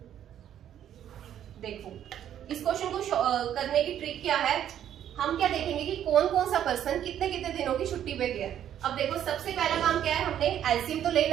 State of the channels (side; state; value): left; quieter; 10.5 dB